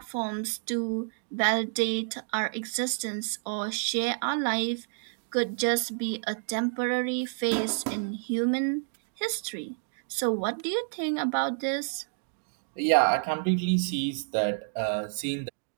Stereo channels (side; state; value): left; silent; digital silence